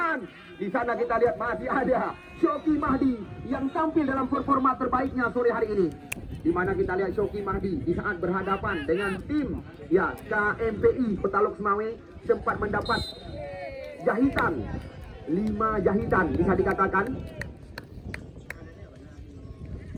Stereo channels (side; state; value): both; identical; correlation 1.00